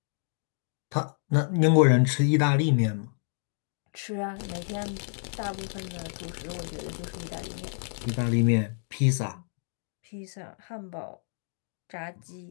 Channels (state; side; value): silent; right; digital silence